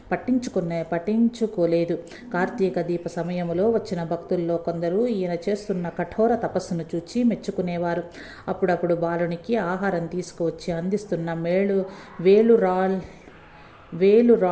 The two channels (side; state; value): both; identical; correlation 1.00